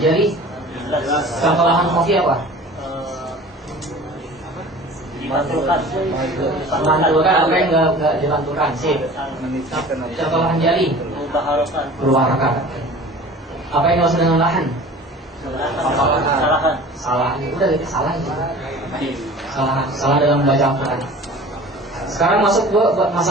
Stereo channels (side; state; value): both; normal; correlation 0.42